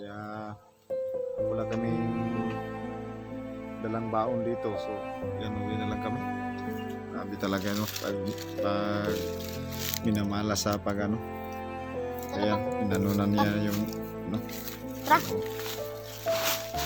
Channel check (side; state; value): both; identical; correlation 1.00